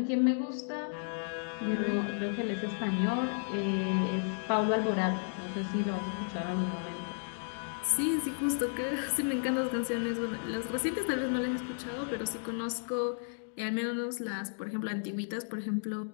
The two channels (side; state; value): right; silent; digital silence